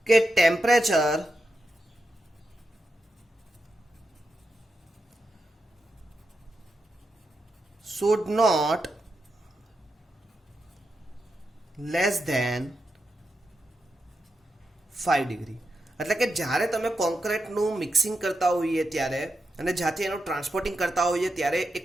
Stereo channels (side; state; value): both; normal; correlation 0.87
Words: કે temperature should not less than 5 degree એટલે કે જ્યારે તમે કોન્ક્રીટનું મિક્સિંગ કરતા હોઈએ ત્યારે અને જ્યાંથી એનું ટ્રાન્સપોર્ટિંગ કરતા હોઈએ ત્યારે એક